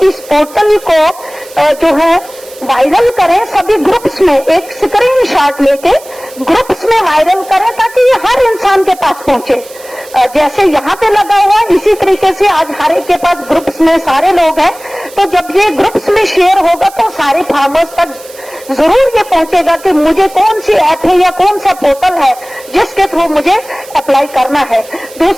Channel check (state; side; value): noise; right; hiss, 20 dB below the sound